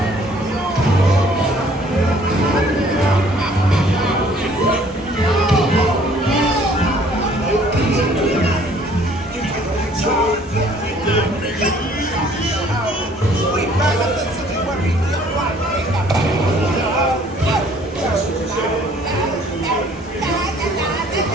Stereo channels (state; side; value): normal; both; correlation 0.58